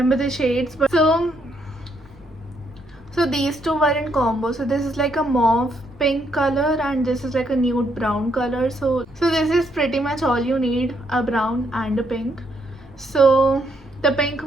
the shades, but so these 2 were in combo. So this is like a mauve pink color and this is like a nude brown color. So this is pretty much all you need, a brown and a pink. So the pink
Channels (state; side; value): noise; left; rumble, 24 dB below the sound